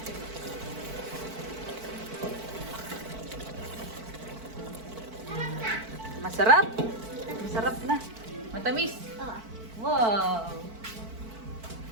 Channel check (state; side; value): late; left; 4.5 ms